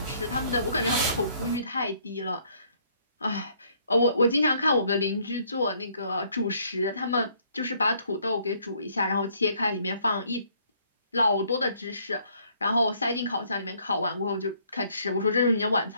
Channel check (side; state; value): both; inverted; correlation -0.65